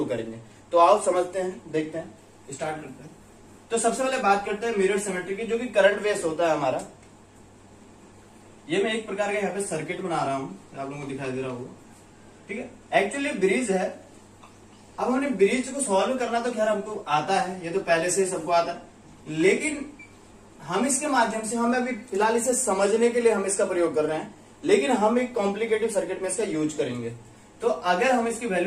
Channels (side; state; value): both; identical; correlation 1.00